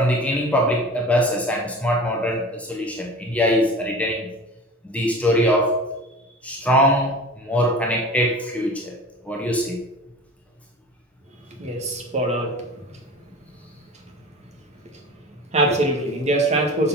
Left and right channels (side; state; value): both; normal; correlation 0.36